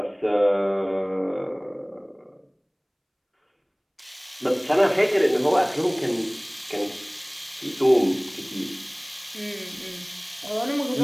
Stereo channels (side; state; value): both; identical; correlation 1.00